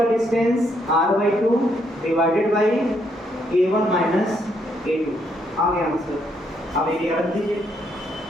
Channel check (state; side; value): normal; both; correlation 0.74